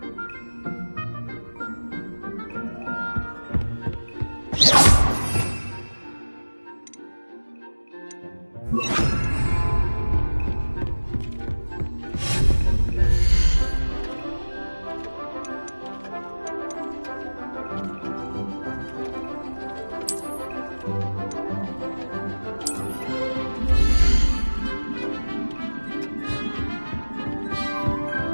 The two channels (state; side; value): inverted; both; correlation -1.00